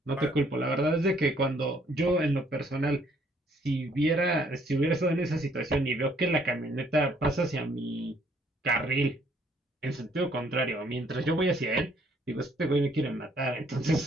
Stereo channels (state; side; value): normal; both; correlation 0.65